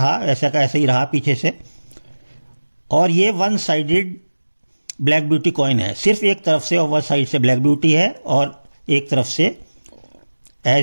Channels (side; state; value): both; inverted; correlation -1.00